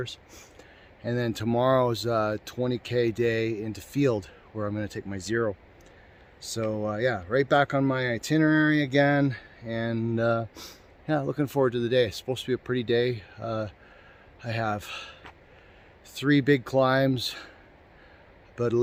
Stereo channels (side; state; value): both; identical; correlation 1.00